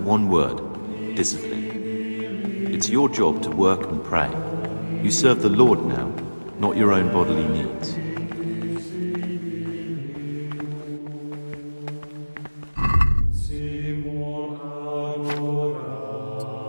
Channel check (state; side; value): inverted; both; correlation -1.00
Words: word. Discipline. It's your job to work and pray. You serve the Lord now, not your own bodily needs.